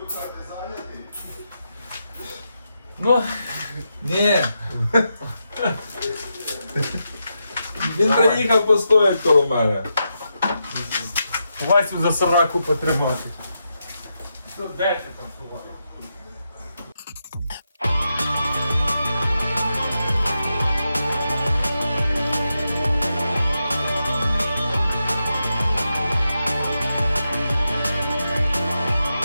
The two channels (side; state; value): both; inverted; correlation -0.86